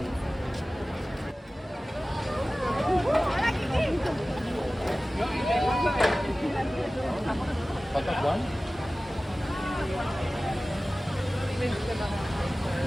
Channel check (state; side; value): normal; both; correlation 0.97